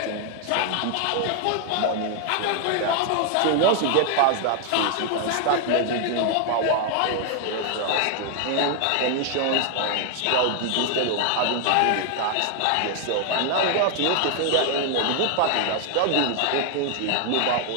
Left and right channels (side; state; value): both; different; correlation 0.00